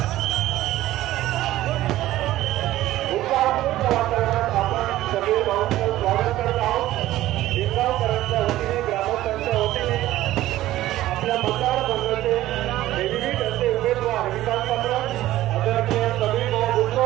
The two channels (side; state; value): left; quieter; 15.0 dB